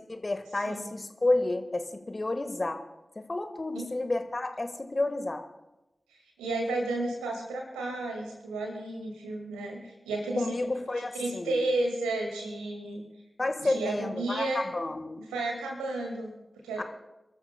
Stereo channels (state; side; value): normal; both; correlation 0.90